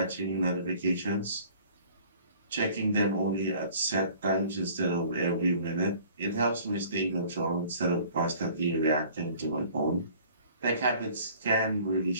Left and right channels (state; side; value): inverted; both; correlation -0.52